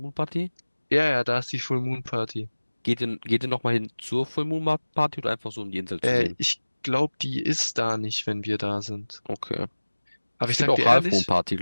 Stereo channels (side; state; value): both; inverted; correlation -1.00